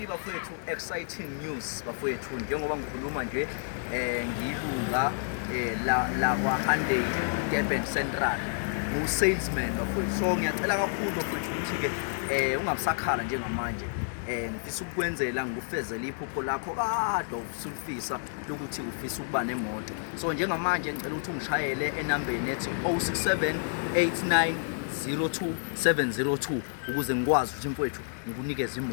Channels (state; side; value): silent; right; 58 dB below the other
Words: bafowethu exciting news bafowethu njengoba ngikhuluma nje ngilunga la kwa Hyundai Durban Central ngu salesman bafowethu. So ngiyacela kakhulu bafowethu ukuthi ke ungabusakhala njengamanje ngifisa ukukwenzela ngikufezele iphupho lakho kade usulifisa lokuthi ufisa ukuba nemoto. So njengamanje ngicela ukuthi ungishayele enambeni ethi 0678902702 ukuze ngikwazi ukuthi mfowethu ngikunikeze